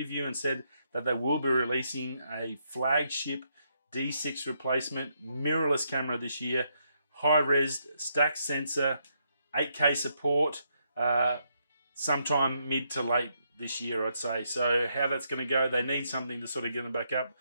and said that they will be releasing a flagship D6 replacement mirrorless camera this year, high-res stack sensor, 8K support, sometime mid to late this year, I'd say. So how that's going to go, they need something to sort of get them back up.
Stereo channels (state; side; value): inverted; both; correlation -0.77